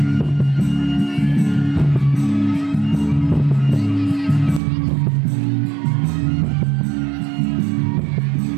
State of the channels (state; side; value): drops out; left; at 4.6 s